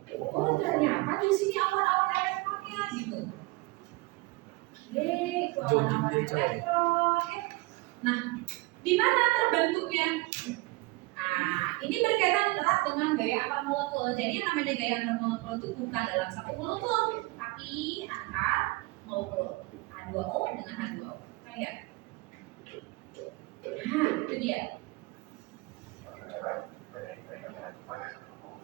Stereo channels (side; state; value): left; quieter; 23.4 dB